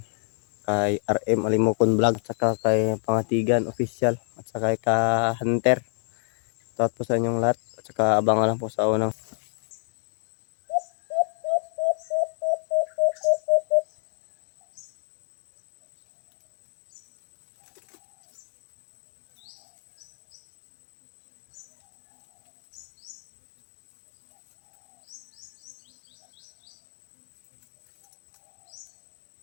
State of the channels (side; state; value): right; silent; 58 dB below the other